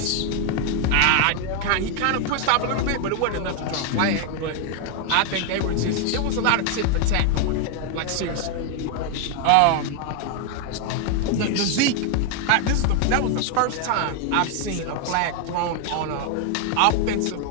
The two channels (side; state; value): both; different; correlation 0.00